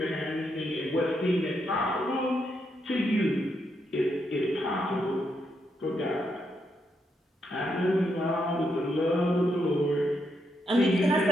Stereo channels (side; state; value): both; normal; correlation 0.80